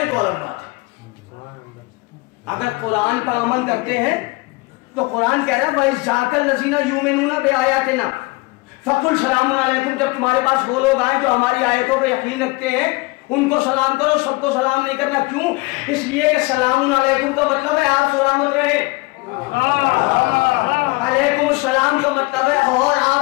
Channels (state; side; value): quieter; right; 24.5 dB